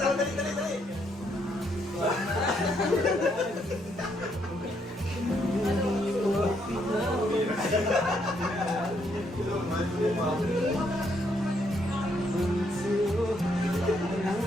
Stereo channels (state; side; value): normal; both; correlation 0.73